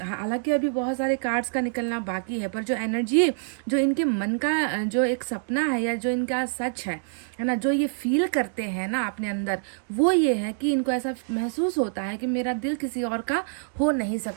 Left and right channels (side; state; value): left; silent; digital silence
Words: हालांकि अभी बहुत सारे कार्ड्स का निकलना बाकी है, पर जो एनर्जी, जो इनके मन का जो एक सपना है या जो इनका सच है ना, जो ये फील करते हैं ना अपने अंदर, वो ये है कि इनको ऐसा महसूस होता है कि मेरा दिल किसी और का हो नहीं